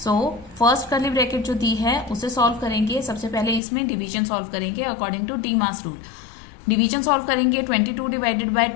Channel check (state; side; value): drops out; right; at 3.6 s